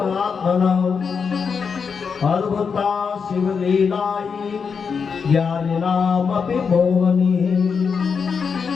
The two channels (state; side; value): quieter; right; 5.9 dB